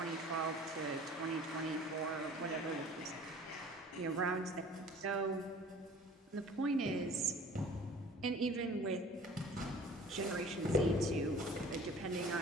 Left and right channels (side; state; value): both; normal; correlation 0.47